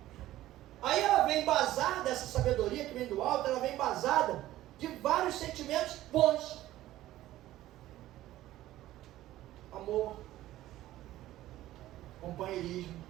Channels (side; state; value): left; quieter; 14.8 dB